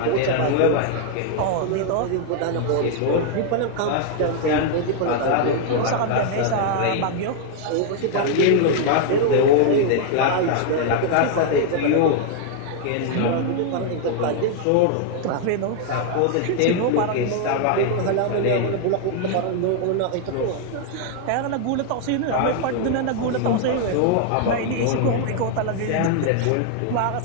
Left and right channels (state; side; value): different; both; correlation 0.00